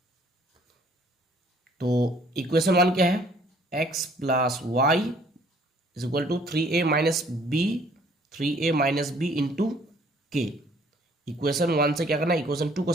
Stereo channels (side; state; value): both; normal; correlation 0.59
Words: तो इक्वेशन 1 क्या है, x plus y is equal to 3a minus b, 3a minus b into k. Equation 1 से क्या करना है, इक्वेशन 2 को